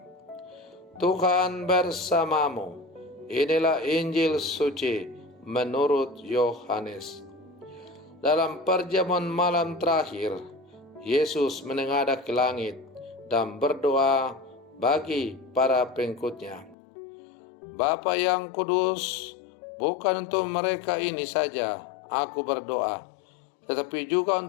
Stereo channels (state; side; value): drops out; right; at 16.8 s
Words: Tuhan bersamamu. Inilah Injil suci menurut Yohanes. Dalam perjamuan malam terakhir, Yesus menengadah ke langit dan berdoa bagi para pengikutnya. Bapa yang kudus, bukan untuk mereka ini saja aku berdoa, tetapi juga